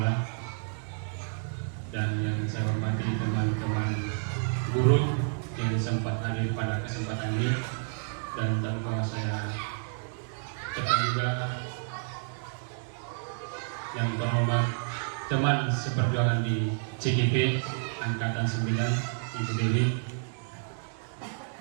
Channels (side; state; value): left; silent; 58 dB below the other